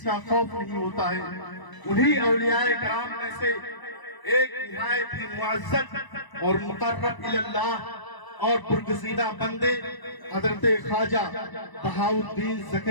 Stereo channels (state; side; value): late; right; 1.0 ms